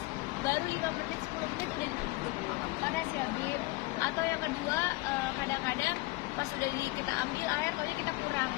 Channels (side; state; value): right; quieter; 21.9 dB